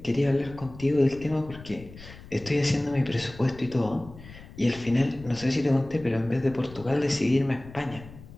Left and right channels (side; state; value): left; noise; rumble, 17 dB below the sound